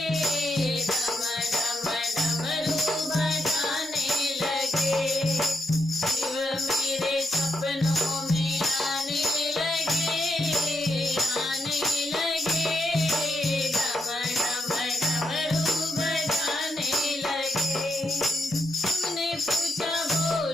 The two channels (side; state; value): both; normal; correlation 0.81